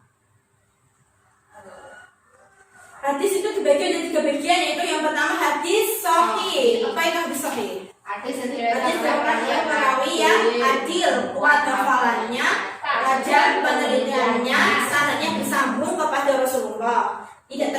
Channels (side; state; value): both; identical; correlation 1.00